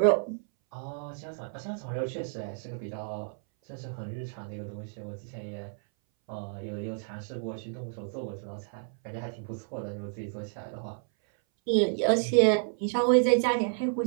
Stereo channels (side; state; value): left; silent; 57 dB below the other